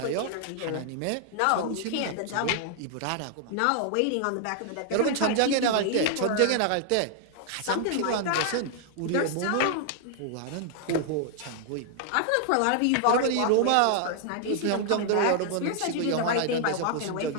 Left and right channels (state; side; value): different; both; correlation 0.00